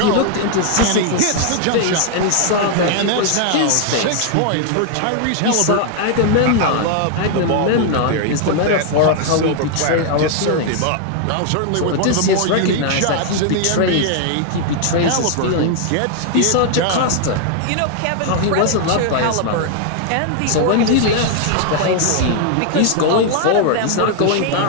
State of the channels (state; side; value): different; both; correlation 0.00